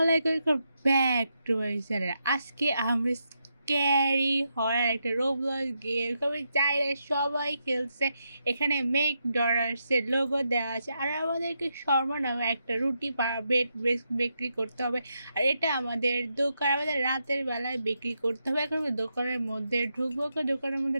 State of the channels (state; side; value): inverted; both; correlation -0.83